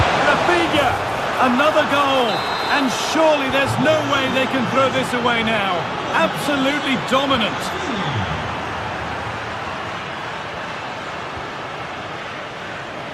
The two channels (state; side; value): identical; both; correlation 1.00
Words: Rafinha! Another goal! And surely there's no way they can throw this away now. Absolutely dominant.